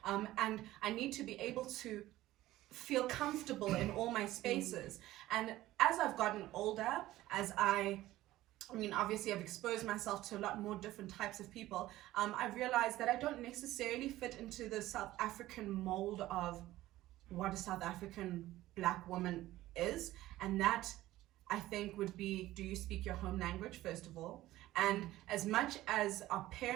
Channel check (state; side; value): quieter; left; 15.9 dB